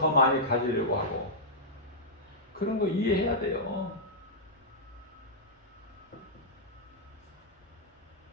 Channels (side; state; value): both; normal; correlation -0.10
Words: 많이 가지려고 하고 그런 거 이해해야 돼요.